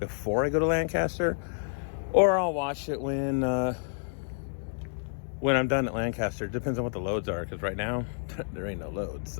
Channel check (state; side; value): silent; right; digital silence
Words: I go to Lancaster, or I'll wash it when I'm done at Lancaster. It depends on what the loads are, because right now there ain't no loads.